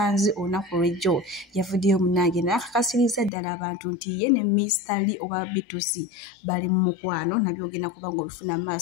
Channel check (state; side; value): drops out; right; at 3.3 s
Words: olunaku lw'ejjo yavuddeyo munnange n'akakasiriza ddala abantu nti ye ne Mr. oba Beatrice bali mu mukwano, nabyo ogenda kuba ng'obifuna mu